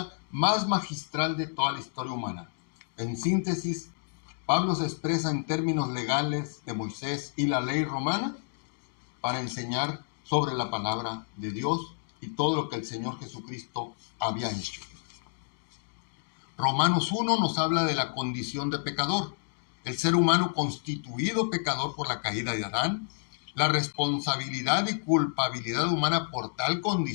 más magistral de toda la historia humana. En síntesis, Pablo se expresa en términos legales de Moisés y la ley romana para enseñar sobre la palabra de Dios y todo lo que el Señor Jesucristo había hecho. Romanos 1 nos habla de la condición de pecador, el ser humano constituido pecador por la caída de Adán, la responsabilidad y culpabilidad humana por tal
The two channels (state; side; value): silent; right; digital silence